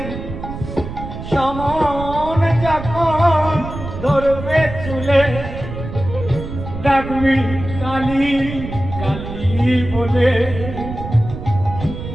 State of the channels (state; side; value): noise; right; rumble, 9 dB below the sound